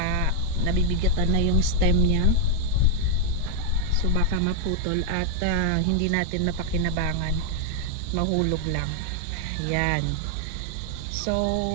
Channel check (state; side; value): different; both; correlation 0.00